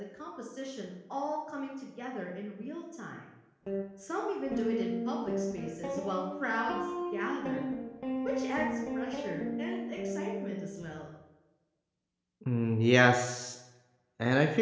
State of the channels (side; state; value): both; identical; correlation 1.00